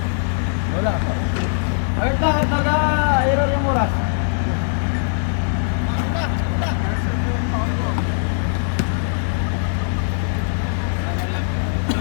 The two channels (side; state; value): right; silent; digital silence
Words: Wala. Ayun lang at nag-error yung oras.